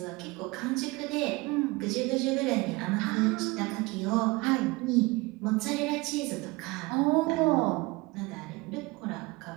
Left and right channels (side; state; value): left; quieter; 23.8 dB